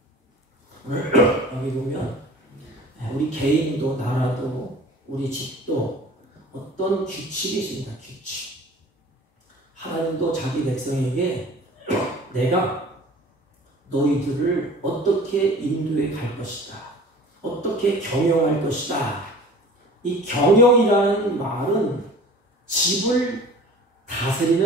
오늘 여기 보면 우리 개인도 나라도 우리 집도 어떤 규칙이 있습니다. 규칙. 하나님도 자기 백성에게 내가 너희들을 어떻게 인도해 갈 것이다. 어떻게 경영할 것이다. 이 경영이라는 말은 집을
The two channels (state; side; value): normal; both; correlation 0.44